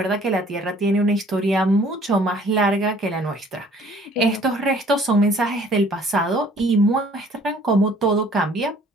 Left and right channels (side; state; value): both; normal; correlation 0.56